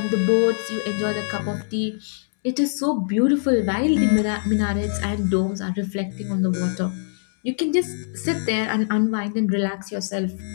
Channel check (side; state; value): right; silent; digital silence